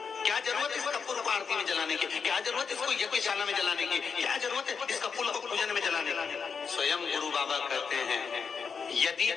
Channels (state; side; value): quieter; right; 5.9 dB